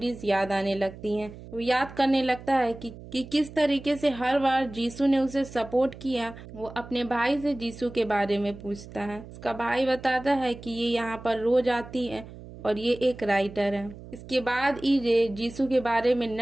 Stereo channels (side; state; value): right; noise; hum, 16 dB below the sound